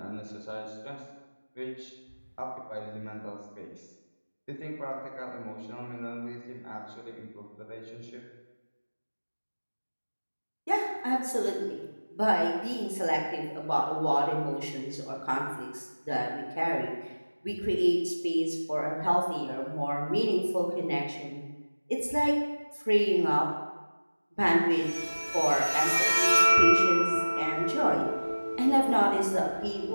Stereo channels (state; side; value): inverted; both; correlation -1.00